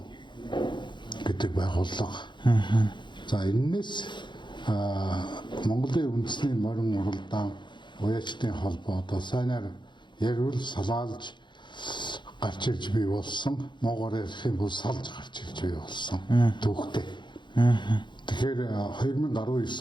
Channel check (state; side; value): late; right; 0.23 ms